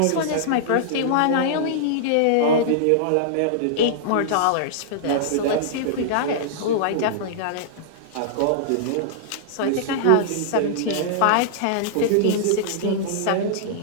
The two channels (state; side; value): different; both; correlation -0.02